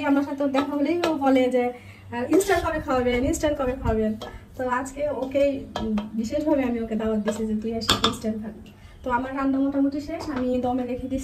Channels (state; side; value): identical; both; correlation 1.00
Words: আমার সাথে দেখা হলেই ও বলে যে ইনস্ট্যান্ট কবে খাওয়াবেন, ইনস্ট্যান্ট কবে খাওয়াবেন। তো আজকে ওকে বিশেষভাবে আমি ওকে দাওয়াত দিচ্ছি যে তুই এসে ইনস্ট্যান্ট খাবি। তো আমার রান্না মোটামুটি শেষ, আমি দমে